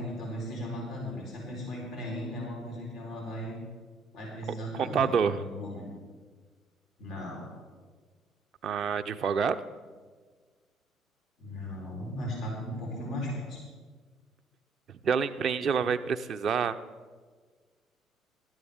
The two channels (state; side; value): quieter; left; 4.3 dB